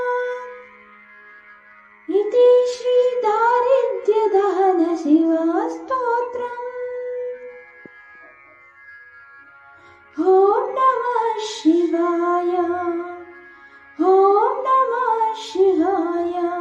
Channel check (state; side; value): identical; both; correlation 1.00